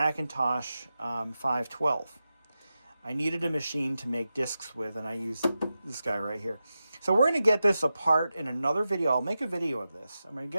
512. I needed a machine to make discs with, and I used this guy right here. So we're going to get this apart in another video. I'll make a video of this. I'm going to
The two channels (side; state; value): both; inverted; correlation -0.92